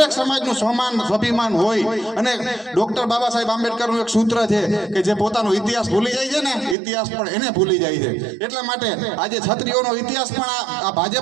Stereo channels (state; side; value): drops out; left; at 6.8 s